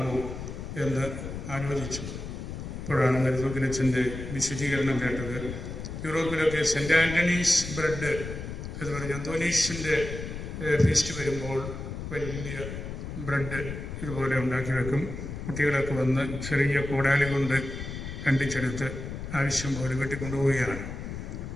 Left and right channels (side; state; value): left; noise; rumble, 7 dB below the sound